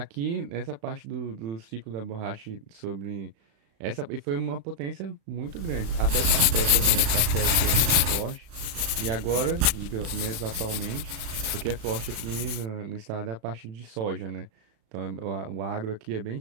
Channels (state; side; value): late; left; 36 ms